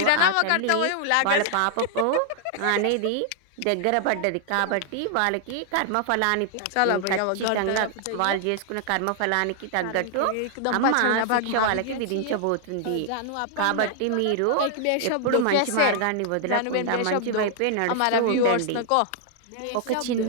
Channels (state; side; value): different; both; correlation 0.00